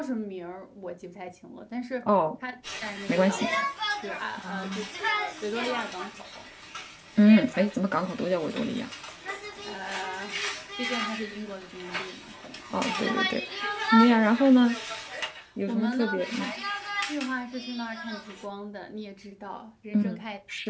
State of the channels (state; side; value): identical; both; correlation 1.00